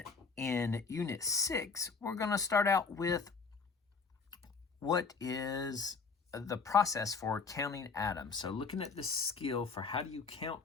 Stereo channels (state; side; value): quieter; right; 4.9 dB